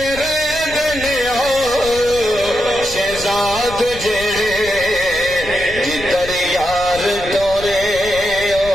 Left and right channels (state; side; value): noise; left; rumble, 14 dB below the sound